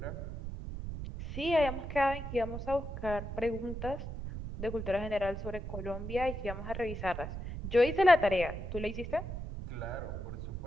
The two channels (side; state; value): right; noise; rumble, 6 dB below the sound